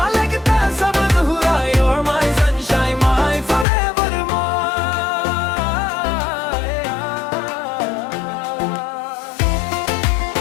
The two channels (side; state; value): right; drops out; at 3.7 s